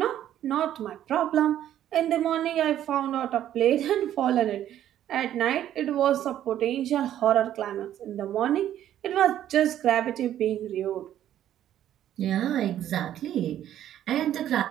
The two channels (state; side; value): quieter; left; 11.5 dB